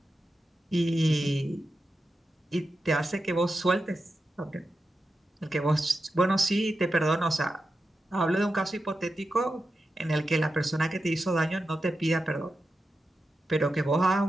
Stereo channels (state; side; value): normal; both; correlation 0.90